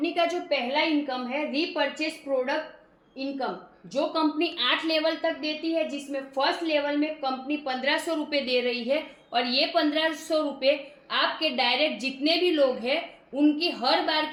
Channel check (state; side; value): identical; both; correlation 1.00